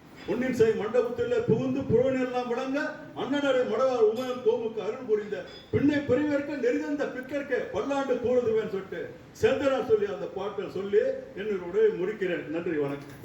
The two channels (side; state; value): both; identical; correlation 1.00